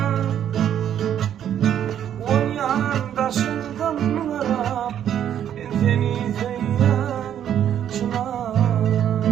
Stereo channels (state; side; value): quieter; left; 10.0 dB